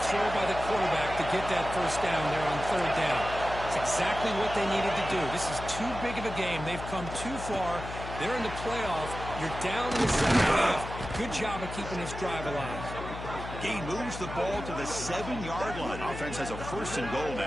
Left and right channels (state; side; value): noise; left; hum, 9 dB below the sound